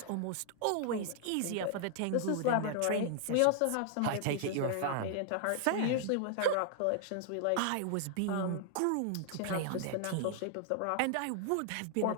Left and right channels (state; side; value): different; both; correlation 0.00